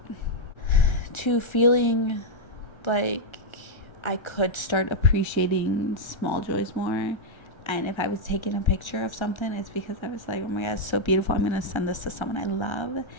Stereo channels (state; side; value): late; right; 1.4 ms